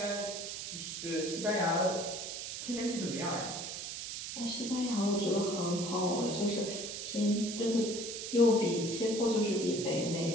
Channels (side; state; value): right; noise; hiss, 6 dB below the sound